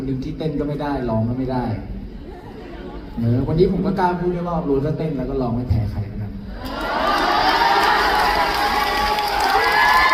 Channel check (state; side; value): identical; both; correlation 1.00